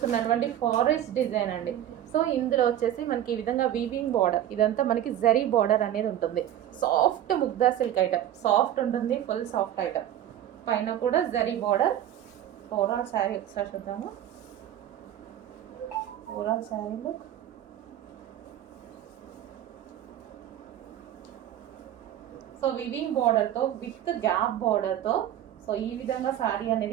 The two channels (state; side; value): quieter; left; 11.5 dB